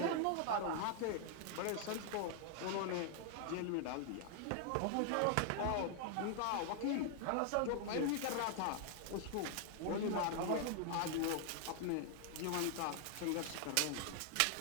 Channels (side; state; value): both; different; correlation 0.00